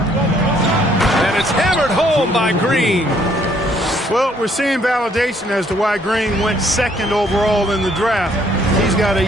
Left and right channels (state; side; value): normal; both; correlation 0.65